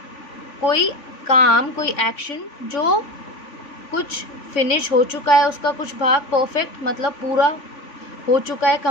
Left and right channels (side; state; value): right; late; 3.5 ms